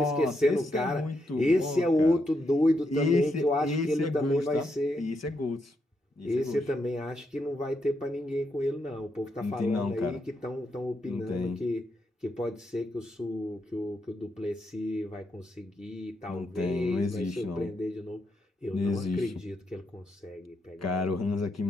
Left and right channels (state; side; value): normal; both; correlation 0.81